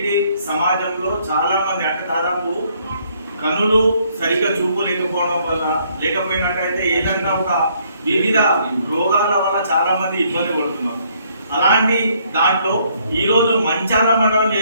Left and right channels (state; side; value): inverted; both; correlation -0.67